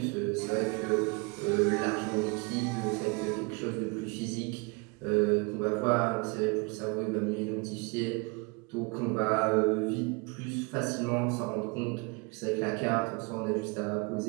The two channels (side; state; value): left; quieter; 29.7 dB